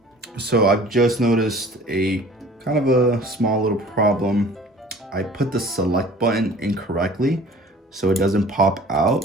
So I've just noticed a kind of a small little problem. I put the select button incorrectly, so it doesn't pop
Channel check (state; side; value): normal; both; correlation 0.48